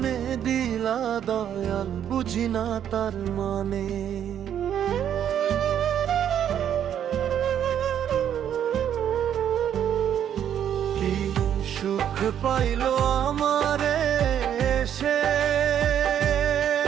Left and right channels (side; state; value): left; quieter; 9.6 dB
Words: দিলা দয়াল, বুঝি না তার মানে। কি সুখ পাইল আমারে সে,